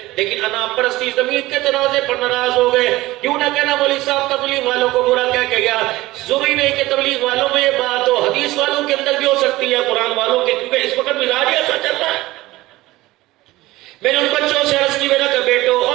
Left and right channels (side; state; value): left; quieter; 18.4 dB